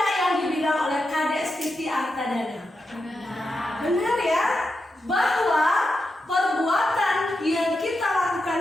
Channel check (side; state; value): both; normal; correlation 0.88